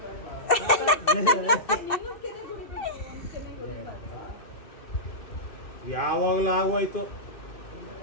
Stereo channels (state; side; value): late; right; 2.6 ms